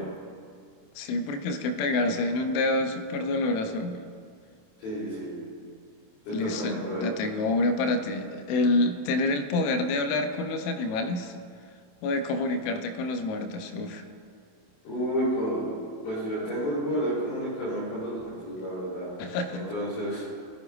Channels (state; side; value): late; right; 27 ms